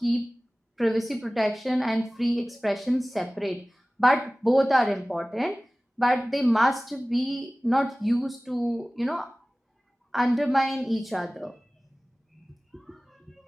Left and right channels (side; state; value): both; normal; correlation 0.98